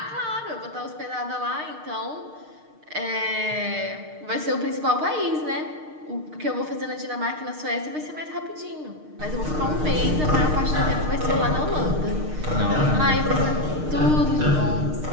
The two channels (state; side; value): late; left; 6.6 ms